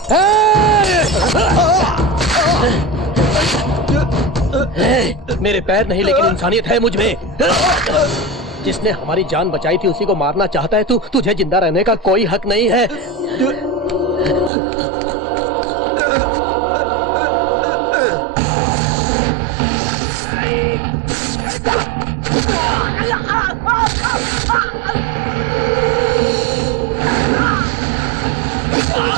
मेरे पैर नहीं लेकिन इंसानियत है मुझ में। जिसने हमारी जान बचाई थी उसी को मारना चाहता है तू? तुझे जिंदा रहने का कोई हक नहीं है।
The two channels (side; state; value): left; drops out; at 14.5 s